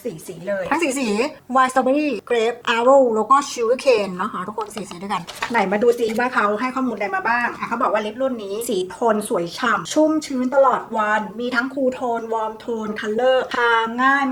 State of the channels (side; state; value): both; identical; correlation 1.00